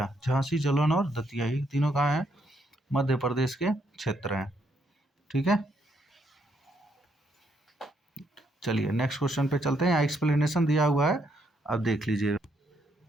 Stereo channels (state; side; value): normal; both; correlation 0.74